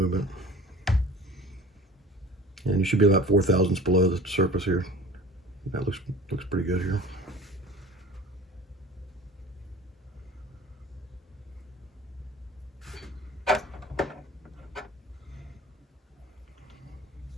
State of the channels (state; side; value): normal; both; correlation 0.42